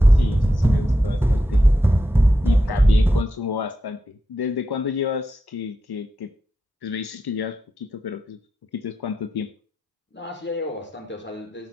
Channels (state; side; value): normal; both; correlation 0.88